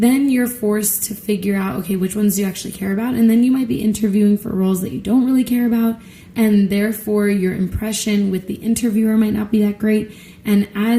you're forced to figure out, okay, which ones do you actually care about? And then you might be interviewing for roles that you don't really care about, and therefore your impression with the interviewer might not be that great. And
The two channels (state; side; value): identical; both; correlation 1.00